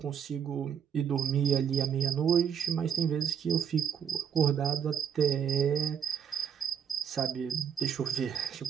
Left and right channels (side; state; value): left; quieter; 8.1 dB